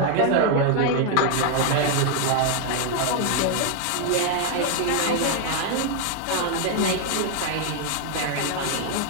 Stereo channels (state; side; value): different; both; correlation 0.00